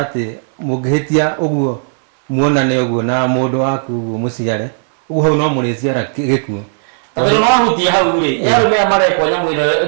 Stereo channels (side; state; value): left; silent; 60 dB below the other